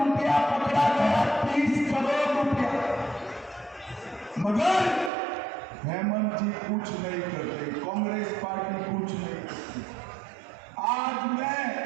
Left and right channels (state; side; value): drops out; left; at 5.1 s